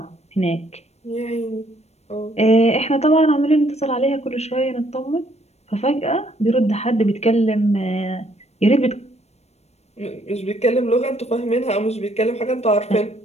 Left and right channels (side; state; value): right; late; 0.31 ms